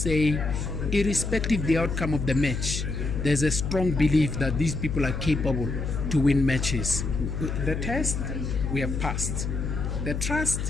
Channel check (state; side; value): noise; left; hum, 3 dB below the sound